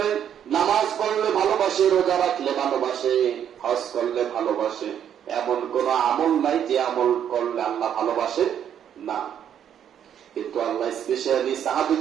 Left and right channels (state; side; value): quieter; left; 9.3 dB